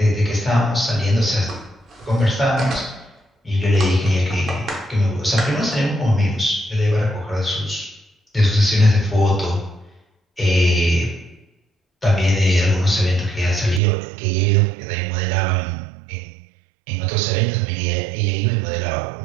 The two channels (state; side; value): drops out; left; at 13.8 s